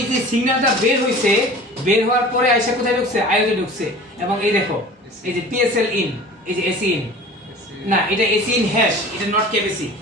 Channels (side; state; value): both; normal; correlation 0.41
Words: যে সিগন্যালটা বের হইছে বের হওয়ার পরে আইসা কোথায় ঢুকছে আইওতে ঢুকছে এবং এই দেখো এই যে PSL in এই যে AC in না এটা AC in হ্যাশ এটা নট কেবিসি